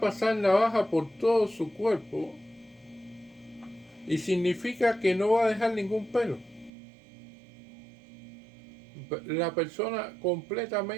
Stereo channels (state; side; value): drops out; left; at 6.7 s